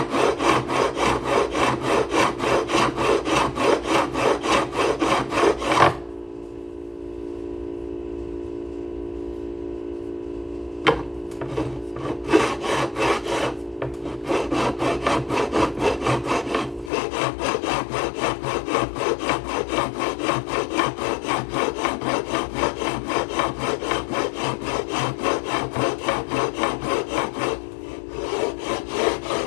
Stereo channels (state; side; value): drops out; right; at 16.9 s